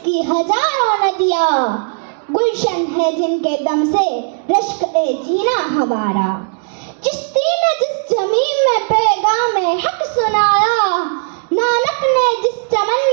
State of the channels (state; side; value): silent; left; 69 dB below the other